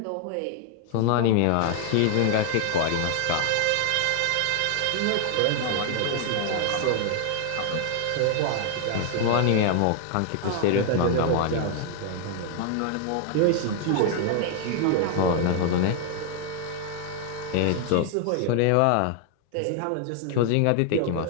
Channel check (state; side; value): different; both; correlation 0.00